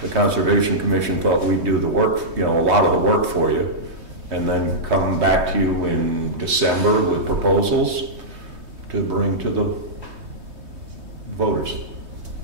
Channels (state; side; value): late; left; 3.2 ms